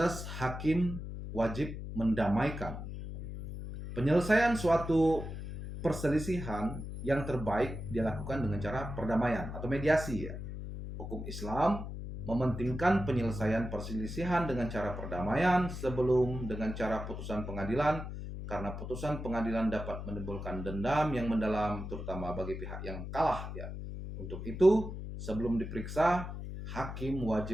hakim wajib mendamaikan. Penyelesaian suatu perselisihan yang terbaik dilakukan dengan cara perdamaian atau mediasi ya. Hukum Islam mementingkan penyelesaian perselisihan dengan cara perdamaian sebelum dengan cara putusan pengadilan, karena putusan pengadilan dapat menimbulkan dendam yang mendalam terutama bagi pihak yang kalah ya. Untuk itu, sebelum diperiksa, hakim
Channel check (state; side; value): noise; left; hum, 7 dB below the sound